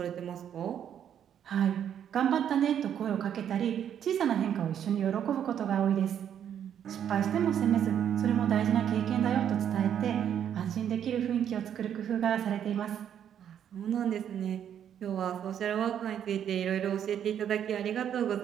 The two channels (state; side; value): quieter; left; 9.3 dB